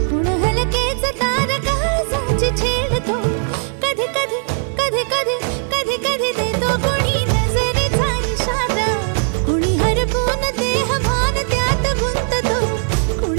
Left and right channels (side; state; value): left; silent; 61 dB below the other